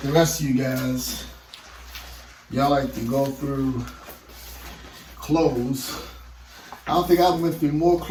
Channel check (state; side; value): identical; both; correlation 1.00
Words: the rest of you guys, y'all like to go through clothes. I don't think I went through more